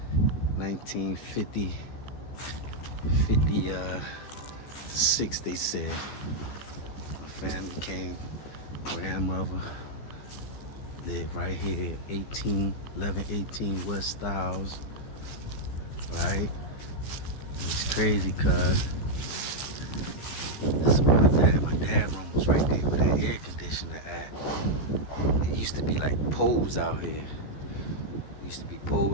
1956, they said. My family came, grandmother lived right here, 1118 West Styles, right? It's crazy, cuz this is where my dad's room was right there with that air conditioner at. It used to be like poles out here. Used to be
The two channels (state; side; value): late; right; 14 ms